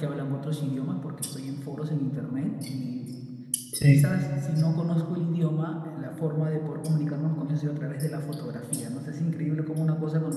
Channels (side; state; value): both; identical; correlation 1.00